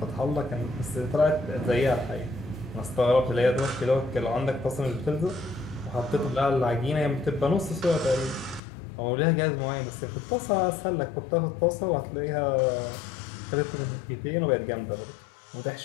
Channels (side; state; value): right; drops out; at 8.6 s